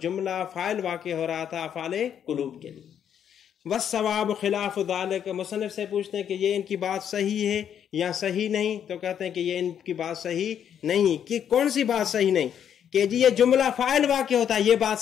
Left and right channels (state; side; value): quieter; right; 8.9 dB